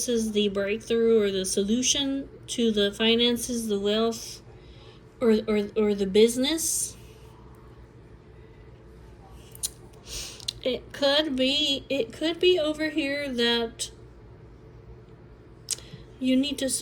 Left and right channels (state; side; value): identical; both; correlation 1.00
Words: is the breakthrough or the solution to the finances, the wealth, or the business. It could be over here that you need to